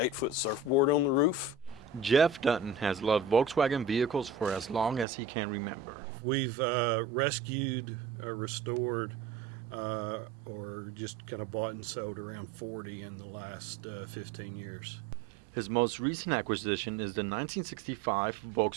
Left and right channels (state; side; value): drops out; left; at 5.1 s